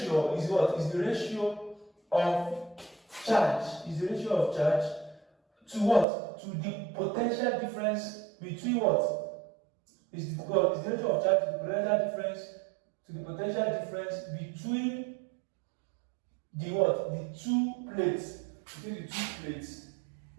is what? Is the ratio of charge. Is the ratio of charge to what? To the potential difference between what? Is the ratio of charge to the potential difference between the what? The two plates.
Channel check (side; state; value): left; drops out; at 6.1 s